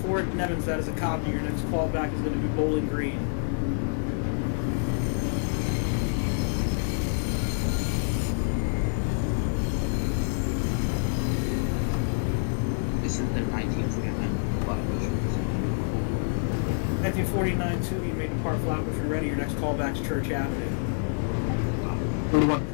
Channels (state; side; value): silent; right; digital silence